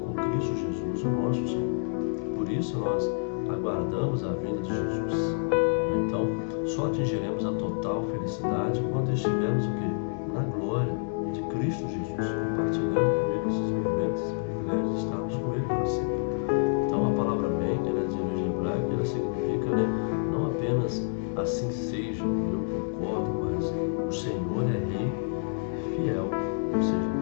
Cristo Jesus, o nosso Senhor. Por isso nós aguardamos a vinda de Jesus. Então, só atingiremos a total felicidade quando estivermos o quê? Na glória de Cristo Jesus, compartilhando com Ele esses momentos, esse privilégio de estarmos com Ele para sempre. Então, a palavra amém, ela é de origem hebraica, ela significa, né, não apenas assim seja, eu concordo, mas o Senhor é Rei fiel, ou seja,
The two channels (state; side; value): silent; right; digital silence